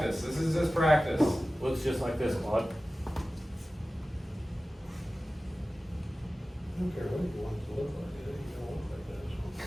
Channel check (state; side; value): normal; both; correlation 0.96